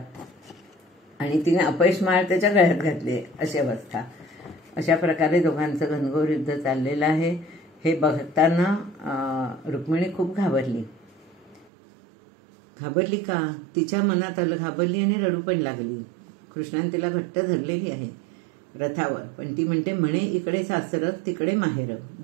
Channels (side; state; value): left; drops out; at 11.7 s